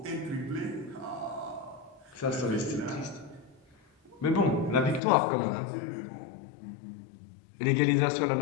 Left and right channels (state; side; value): drops out; right; at 5.0 s